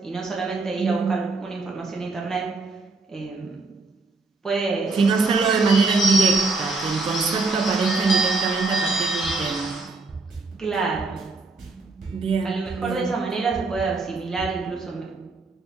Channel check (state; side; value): quieter; left; 3.6 dB